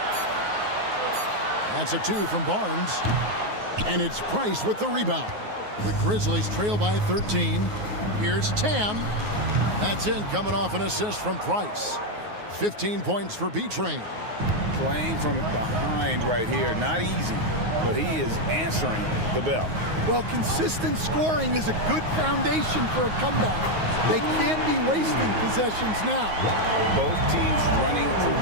That's a 2 from Barnes. And it's Price with the rebound. The Grizzlies trail by 13. Here's Tam. That's in, coming off an assist from Price. 15 points for B-Train. Playing from behind right here. Not easy, but he is answering the bell. Well, consistent scoring is a good foundation for a comeback. They can't be wasting possessions now. Both teams running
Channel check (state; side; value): late; left; 9.5 ms